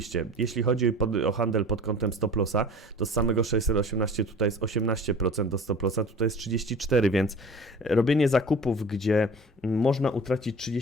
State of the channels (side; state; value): both; normal; correlation 0.41